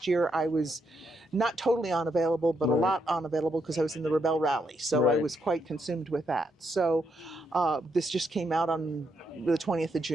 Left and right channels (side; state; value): both; normal; correlation 0.79